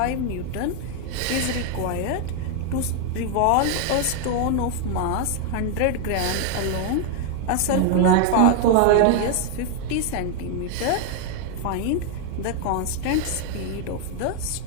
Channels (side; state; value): both; different; correlation 0.00